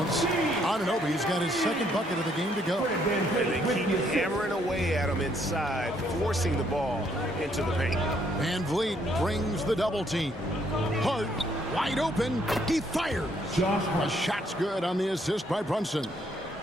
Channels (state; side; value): normal; both; correlation 0.69